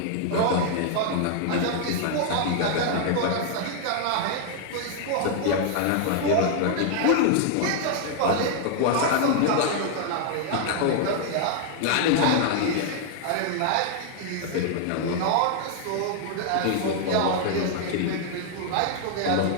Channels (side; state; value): both; different; correlation 0.00